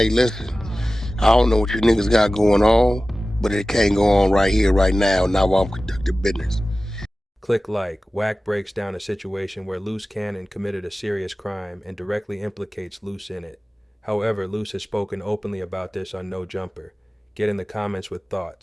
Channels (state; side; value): normal; both; correlation 0.96